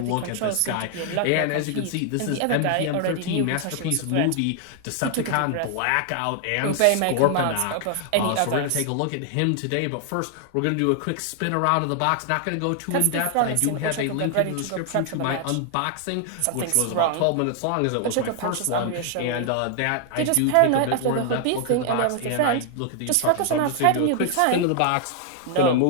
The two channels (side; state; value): both; different; correlation 0.00